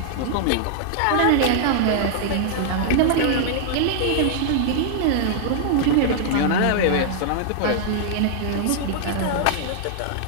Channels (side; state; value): both; different; correlation -0.01